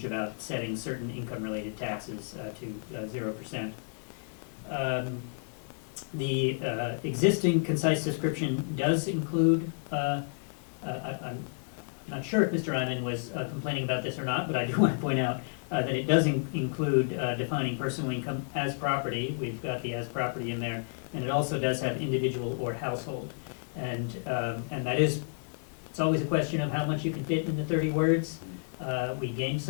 about setting certain income-related taxes to 0%. The existing concise description does include, I'm not sure if Mr. Eyman was complaining about this or not, but I do want to point out that it does include defining personal income as property. We've got the as property in there, and it also does have individual or household. And that is, it's always a question of how much you can fit into 30 words. We gained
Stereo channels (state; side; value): silent; right; digital silence